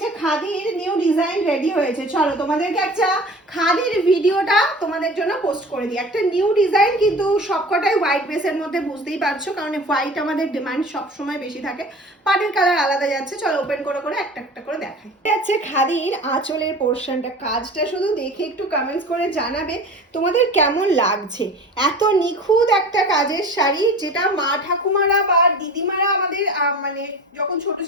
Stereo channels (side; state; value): both; normal; correlation 0.39